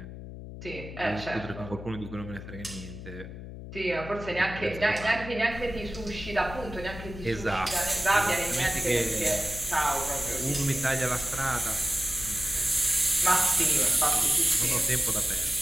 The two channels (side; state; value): left; noise; hum, 11 dB below the sound